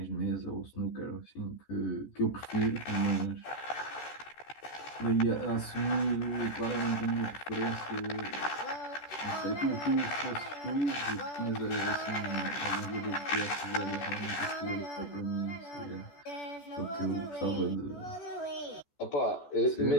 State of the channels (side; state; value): right; late; 14 ms